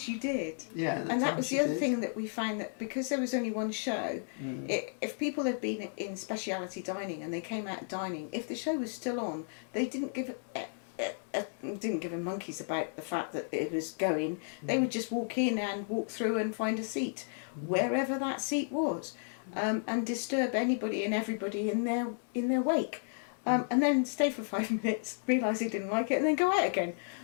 you did. Yeah. And that was the other thing that we found, that because there was only one show, if people had been in speciality dining and they came out of dining, if the show was still on, they didn't give a monkeys about the fact that it was going. They would just walk in and walk through and find a seat wherever that seat was. And disturb anybody and everybody in their wake, and then stay for 5 minutes, realise they didn't like it, and then go out again.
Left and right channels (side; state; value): right; silent; 56 dB below the other